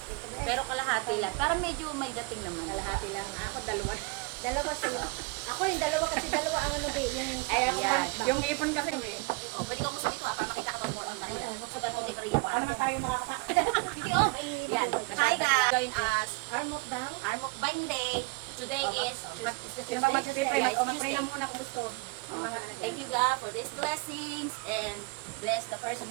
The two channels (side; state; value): left; quieter; 29.3 dB